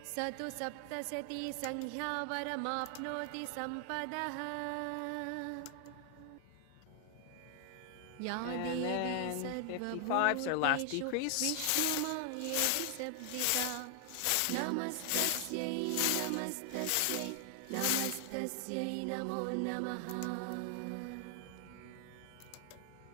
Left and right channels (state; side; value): different; both; correlation 0.00